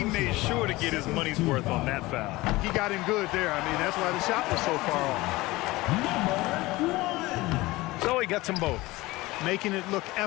made sure to get his money's worth on that foul. He got him good there. I mean, that's why the shot was so far off. So he gets them both. Making it look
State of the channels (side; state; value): right; quieter; 20.1 dB